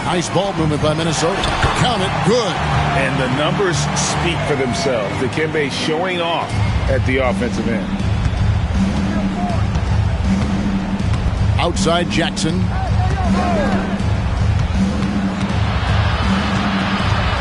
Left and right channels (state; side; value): identical; both; correlation 1.00